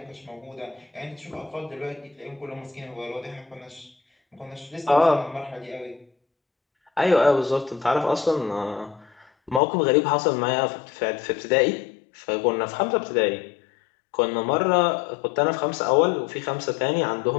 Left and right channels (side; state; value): right; drops out; at 9.6 s